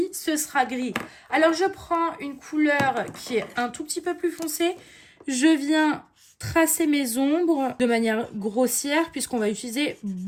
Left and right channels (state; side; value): identical; both; correlation 1.00